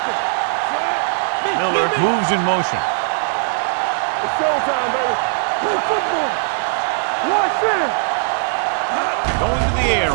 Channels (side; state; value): left; silent; digital silence